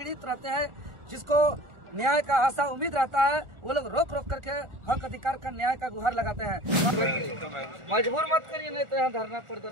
रहते हैं, जिसको न्याय का आशा उम्मीद रहता है, वो लोग रोक रोक करके हक अधिकार का न्याय का गुहार लगाते हैं। मजबूर मत करिए, नहीं तो यहाँ धरना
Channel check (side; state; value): left; late; 1.4 ms